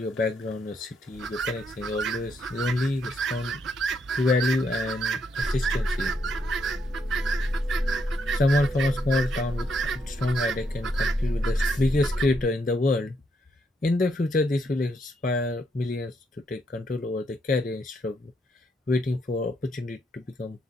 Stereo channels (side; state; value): both; normal; correlation 0.76